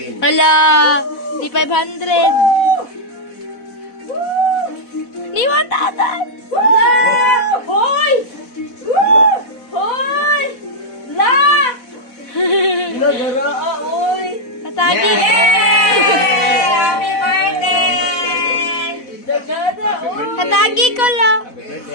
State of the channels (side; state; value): right; late; 4.1 ms